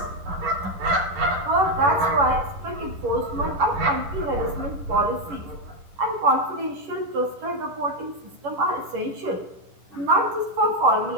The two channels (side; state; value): left; late; 11 ms